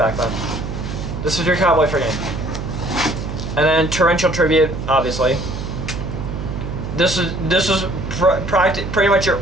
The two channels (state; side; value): noise; right; hum, 6 dB below the sound